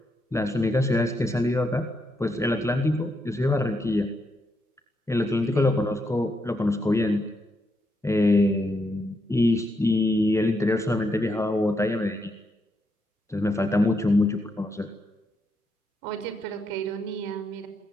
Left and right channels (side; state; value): both; normal; correlation 0.80